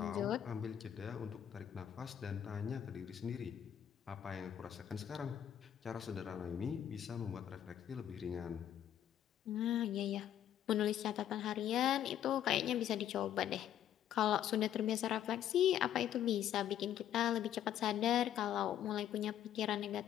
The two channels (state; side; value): quieter; right; 10.5 dB